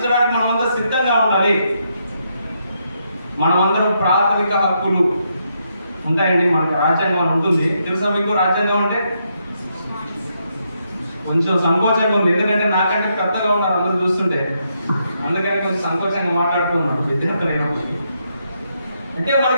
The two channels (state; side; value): inverted; both; correlation -0.79